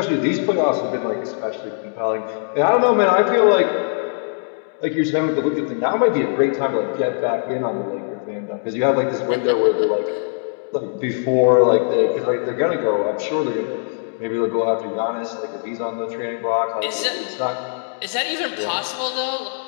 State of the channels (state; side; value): silent; right; digital silence